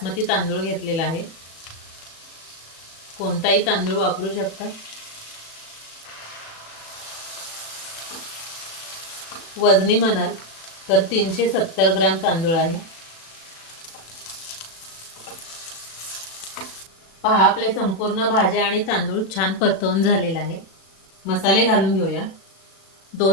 तांदूळ घेतलेला आहे. कोणताही तांदूळ वापरू शकता. वजनी म्हणाल तर 370 ग्रॅम तांदूळ आहे. पहा, आपले संपूर्ण भाज्या आणि तांदूळ छान परतवून झालेला आहे. मसाले घालून घेऊया.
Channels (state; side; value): late; right; 36 ms